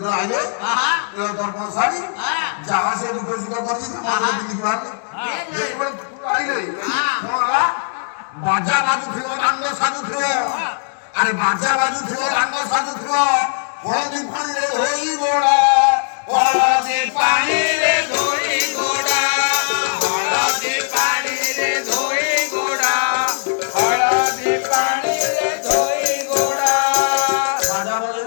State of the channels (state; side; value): silent; right; digital silence